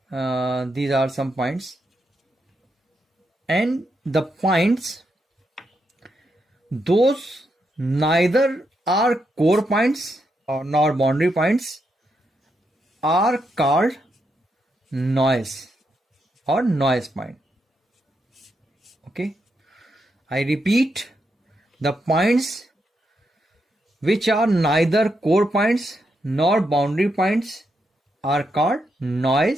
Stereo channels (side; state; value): both; normal; correlation 0.82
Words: are some points, and the points those neither are core points nor boundary points are called noise or noise point. Okay, I repeat, the points which are neither core points nor boundary points are called